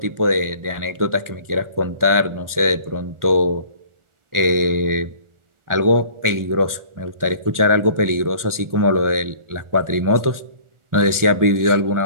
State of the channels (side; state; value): left; late; 1.4 ms